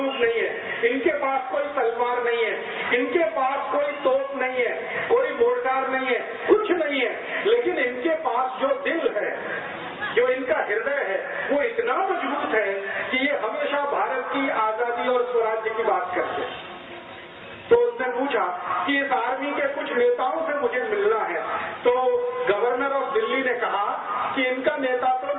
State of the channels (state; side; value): identical; both; correlation 1.00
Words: नहीं है, इनके पास कोई तलवार नहीं है, इनके पास कोई तोप नहीं है, कोई मोर्टार नहीं है, कुछ नहीं है, लेकिन इनके पास जो दिल है, जो इनका हृदय है, वो इतना मजबूत है कि ये हमेशा भारत की आजादी और स्वराज्य की बात करते हैं। तो उसने पूछा कि इस आर्मी के कुछ नेताओं से मुझे मिलना है। तो गवर्नर ऑफ दिल्ली ने कहा कि इनका नेता तो